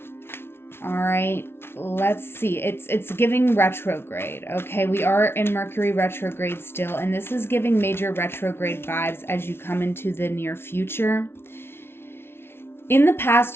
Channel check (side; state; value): right; late; 0.12 ms